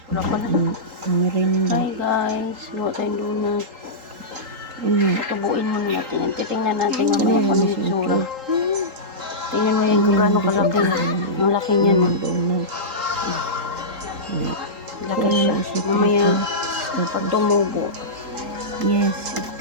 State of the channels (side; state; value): left; late; 3.8 ms